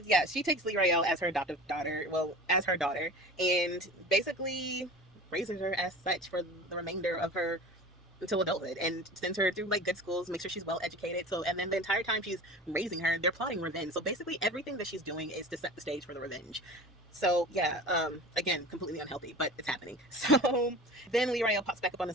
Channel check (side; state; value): both; normal; correlation 0.37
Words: yeah, she takes Lee Rayo as her adoptive daughter, well, as her daughter, and basically raises her as such for the remainder of her until adulthood, and sends her through like good schools, make sure she's well educated. So, and then the entire time she's raising her, they're plotting revenge. So basically everything that she's doing is to set the stage for the revenge. So yeah, again, completely unhealthy, but it's happening. So then Lee Rayo pops back up on the